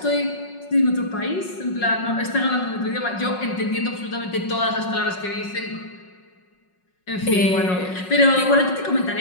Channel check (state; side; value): late; right; 5.4 ms